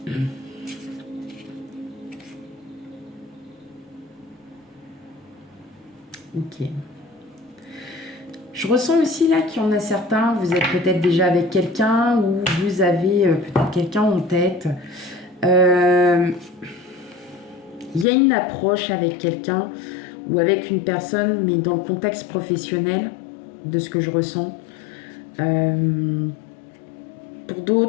Ok. Je ressens aussi là qu'il y en a certains, vous êtes peut-être déjà avec quelqu'un ou vous avez peut-être quelqu'un en tête. Il y a une approche avec quelqu'un ou avec une personne, mais dans le contexte professionnel, de ce que je ressens. Pour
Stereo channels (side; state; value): right; drops out; at 18.1 s